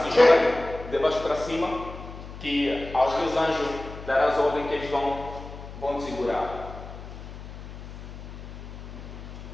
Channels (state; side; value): noise; left; hum, 12 dB below the sound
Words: joga de baixo para cima, que aos teus anjos darás ordem que eles vão te segurar.